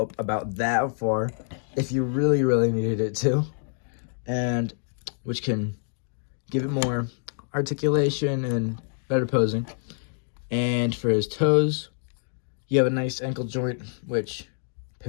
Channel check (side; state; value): right; silent; digital silence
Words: up about that far if you really, really needed it to, and which can give it more articulation and better posing. And for his toes, you have a nice ankle joint, which